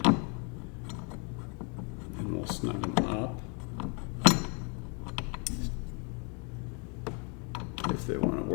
And we'll snug them up. If they want to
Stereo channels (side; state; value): right; quieter; 35.4 dB